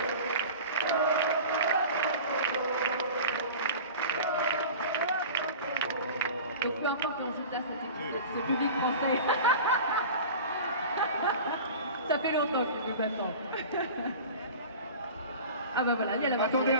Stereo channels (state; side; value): inverted; both; correlation -0.37